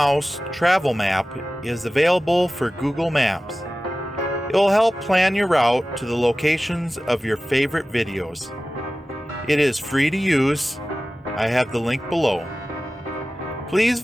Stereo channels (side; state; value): both; normal; correlation 0.96